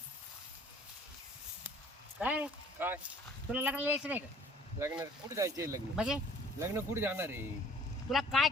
काय काय तुला लग्नाला यायचं नाही का लग्न कुठे जायचे लग्न म्हणजे लग्न कुठे जाणार आहे तुला काय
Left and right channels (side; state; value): both; normal; correlation 0.54